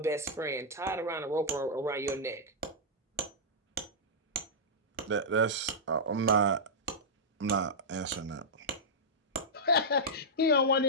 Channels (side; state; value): both; normal; correlation -0.10